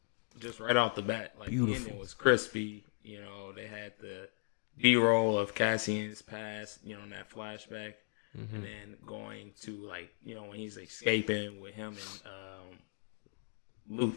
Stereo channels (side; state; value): right; silent; digital silence